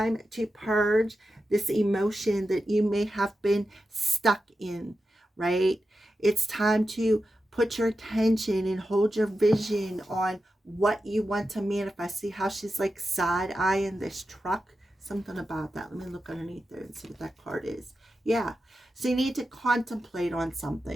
to purge this emotion that you may have been stuck in, right? It's time to put your attention and hold your vision on what you want to manifest. See how she's like side-eyeing this truck? Something about that. Let me look underneath there and see what that card is. Yeah. So you need to contemplate on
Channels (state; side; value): normal; both; correlation 0.90